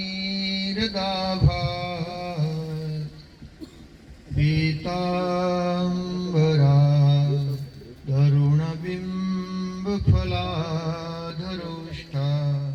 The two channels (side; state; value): both; identical; correlation 1.00